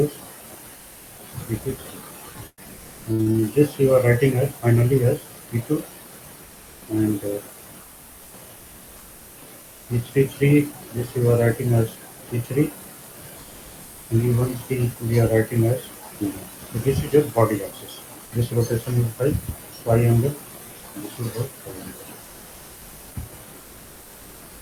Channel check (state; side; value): identical; both; correlation 1.00